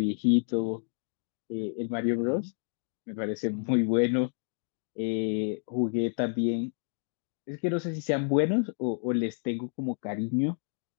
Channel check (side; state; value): right; silent; 58 dB below the other